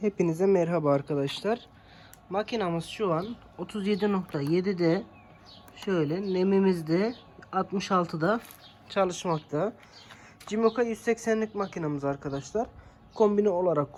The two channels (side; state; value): both; identical; correlation 1.00